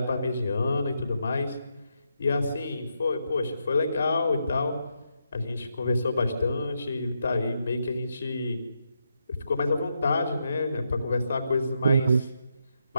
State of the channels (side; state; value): both; inverted; correlation -0.82